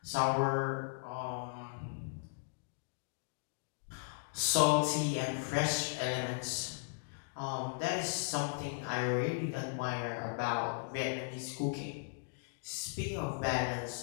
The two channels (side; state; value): right; silent; digital silence